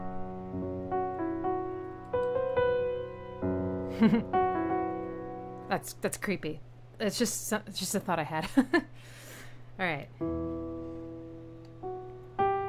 F. That's creepy. It's just a thought I had. All right.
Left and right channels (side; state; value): both; identical; correlation 1.00